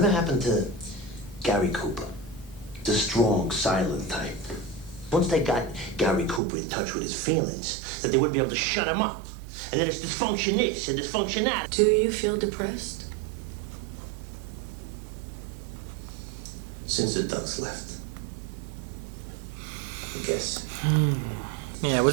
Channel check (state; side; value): drops out; left; at 6.4 s